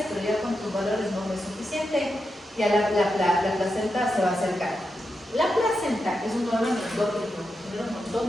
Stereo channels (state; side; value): normal; both; correlation 0.87